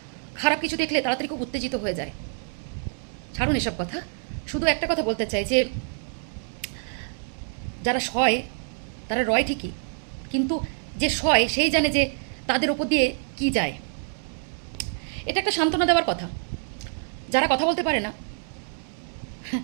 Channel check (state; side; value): silent; left; digital silence